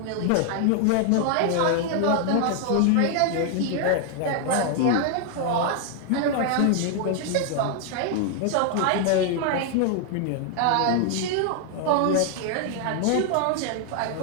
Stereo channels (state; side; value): different; both; correlation 0.00